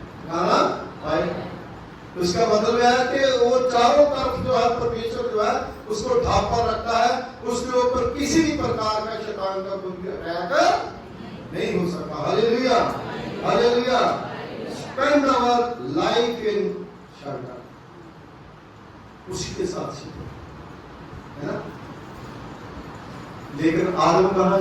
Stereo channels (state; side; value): identical; both; correlation 1.00